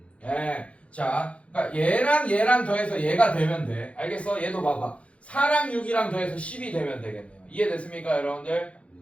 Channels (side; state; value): right; late; 0.062 ms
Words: 예. 자, 그러니까 얘랑 더해서 얘가 되면 돼. 알겠어? 얘도 봐봐. 4랑 6이랑 더해서 10이 되면 되겠네요. 이해됐습니까, 여러분들?